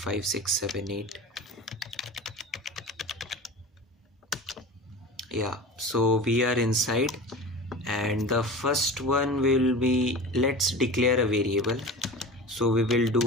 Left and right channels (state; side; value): normal; both; correlation 0.33